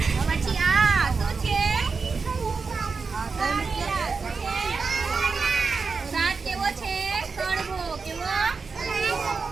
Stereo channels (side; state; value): left; quieter; 4.8 dB